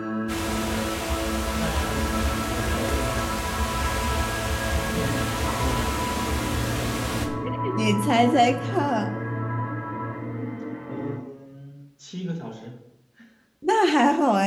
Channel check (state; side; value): identical; both; correlation 1.00